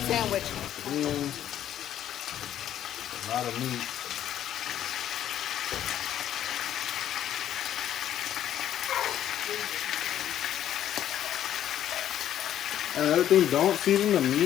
And a lot of meat. And another thing, don't season the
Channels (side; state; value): right; quieter; 11.1 dB